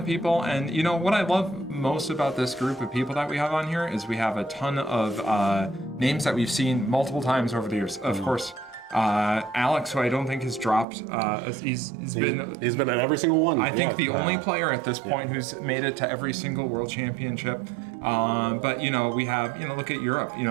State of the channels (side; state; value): left; drops out; at 10.9 s